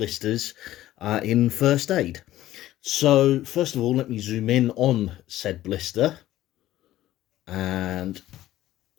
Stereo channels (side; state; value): right; quieter; 14.4 dB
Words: in first aid. So, first of all, let me zoom in on said blister, and